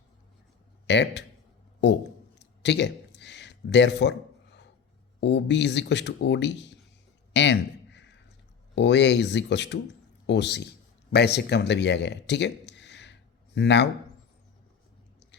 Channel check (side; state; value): right; quieter; 6.8 dB